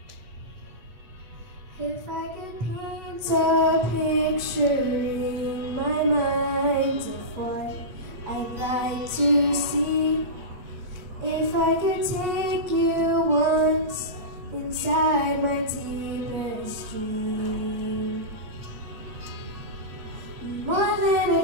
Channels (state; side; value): late; left; 8.2 ms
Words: If I could paint a picture in my mind of what I'd like to see, if I could take you once inside my deepest dream, more than